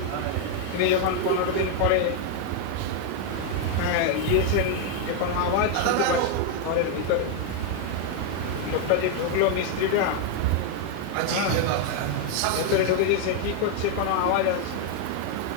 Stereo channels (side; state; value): both; different; correlation 0.00